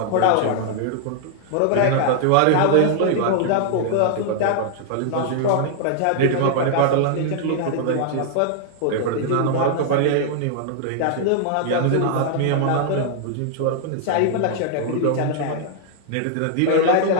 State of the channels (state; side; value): different; both; correlation 0.00